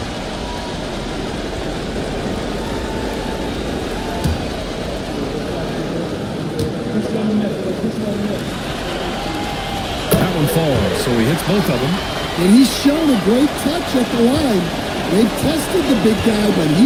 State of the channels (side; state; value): both; identical; correlation 1.00